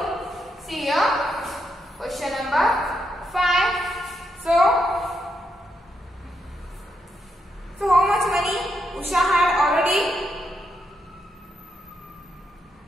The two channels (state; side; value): normal; both; correlation 0.81